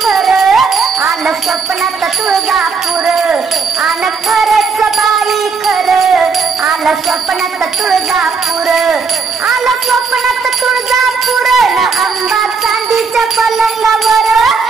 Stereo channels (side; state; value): left; quieter; 5.2 dB